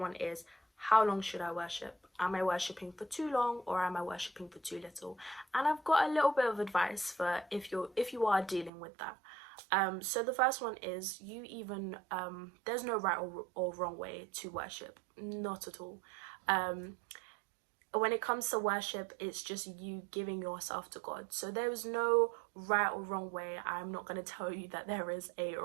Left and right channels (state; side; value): drops out; left; at 8.7 s